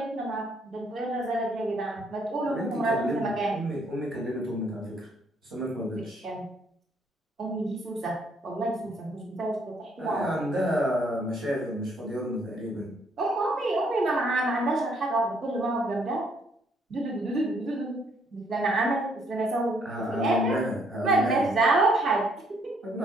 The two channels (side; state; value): both; normal; correlation 0.67